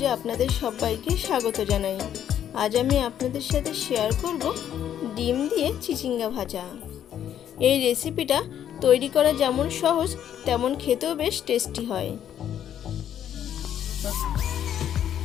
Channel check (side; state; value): right; quieter; 10.1 dB